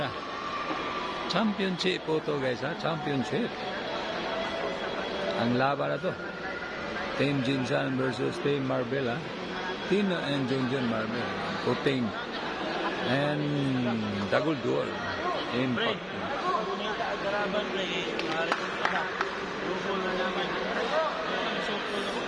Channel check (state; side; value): identical; both; correlation 1.00